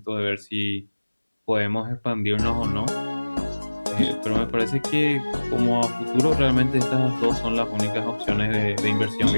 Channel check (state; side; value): inverted; both; correlation -1.00